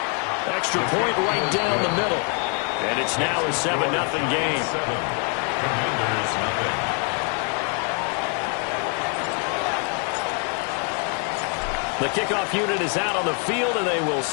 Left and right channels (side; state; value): right; quieter; 38.2 dB